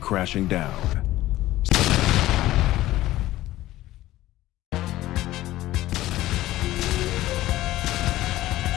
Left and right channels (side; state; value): right; quieter; 15.8 dB